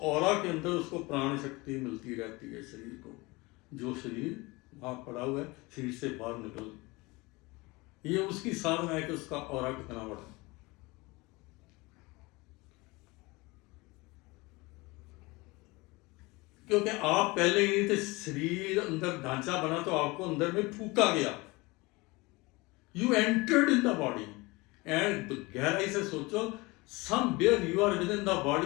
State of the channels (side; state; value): right; quieter; 23.7 dB